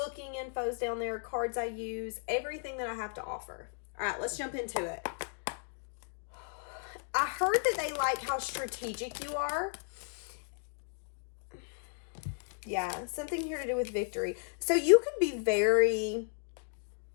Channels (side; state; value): right; silent; 55 dB below the other